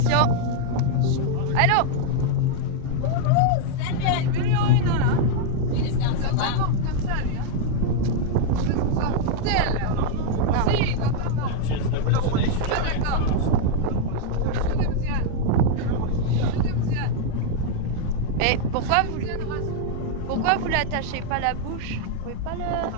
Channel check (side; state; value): both; different; correlation 0.00